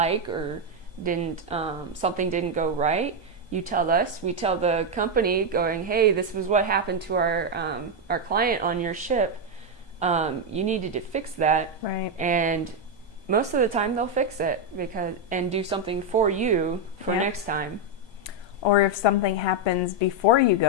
or something didn't go right, you tell us. We tell the company, going, hey, this was what happened to our client on your ship. You needed to fix that. Right. And most of the time they'll fix it and do something for you for next time. Or if something happens before you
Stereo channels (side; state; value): right; late; 1.2 ms